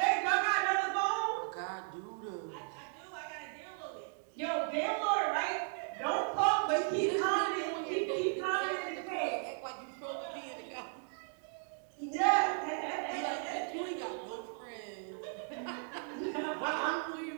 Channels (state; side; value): silent; left; 54 dB below the other